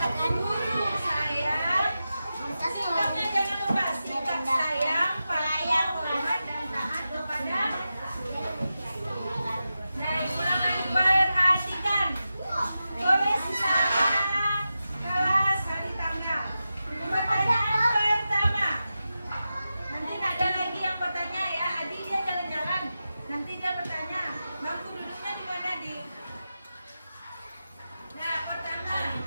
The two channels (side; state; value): both; inverted; correlation -0.92